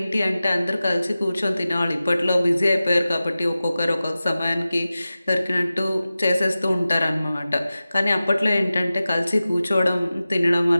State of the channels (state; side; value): inverted; both; correlation -0.95